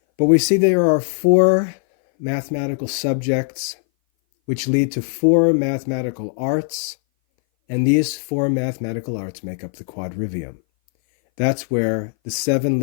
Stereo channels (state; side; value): silent; right; 60 dB below the other